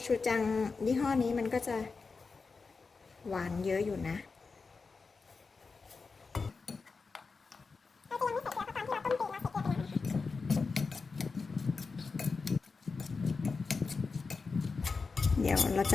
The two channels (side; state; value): right; quieter; 4.5 dB